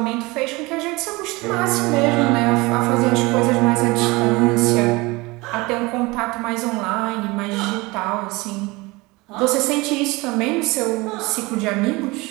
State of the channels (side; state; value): left; quieter; 23.3 dB